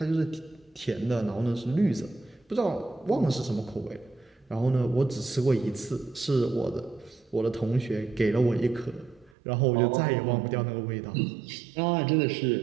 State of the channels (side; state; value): left; drops out; at 9.3 s